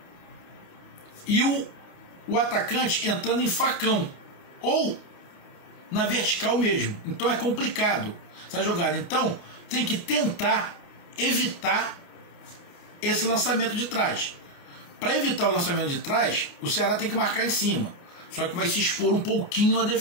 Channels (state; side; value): late; right; 28 ms